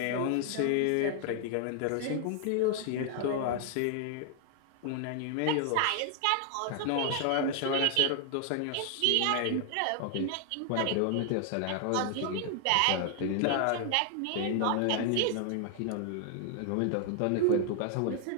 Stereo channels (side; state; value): both; different; correlation 0.00